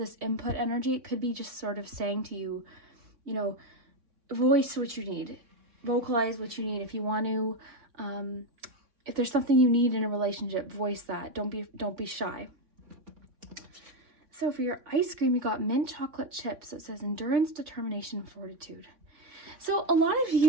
input energy, it could be just sort of saying to you, voice what you need. Vocalize what you need. If you want to, if there's something you need in a relationship, voice that. Don't be shy. So for your ice cream, you got mint chocolate chips. So it says endurance, determination, fortitude. So a lot of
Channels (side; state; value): left; late; 3.6 ms